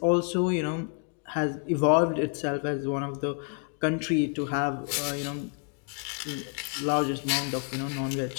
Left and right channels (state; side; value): quieter; right; 38.8 dB